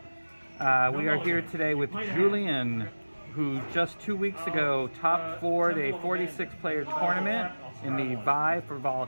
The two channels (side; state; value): both; inverted; correlation -1.00